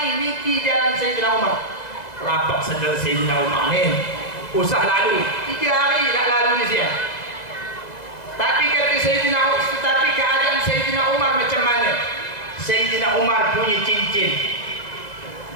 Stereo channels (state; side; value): late; right; 2.0 ms